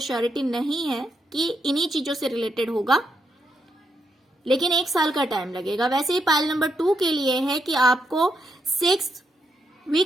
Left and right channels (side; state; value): both; normal; correlation 0.81